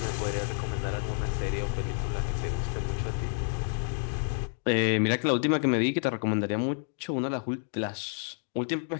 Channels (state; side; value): silent; right; 58 dB below the other